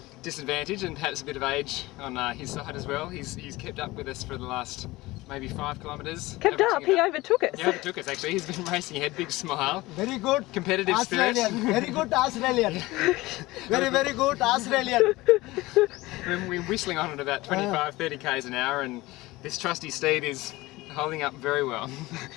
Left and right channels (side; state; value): right; quieter; 19.8 dB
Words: disadvantage and perhaps a bit of age on his side as well, he's kept up with us for the last maybe 5 kilometres. Kept up, he overtook us. He overtook us actually, he's been racing ahead, big smile. Very good. Competitive spirit. Australian. Very good Australian. Very good Australian. We're whistling on at about 25-30 k's an hour, and this trusty steed is holding up very well.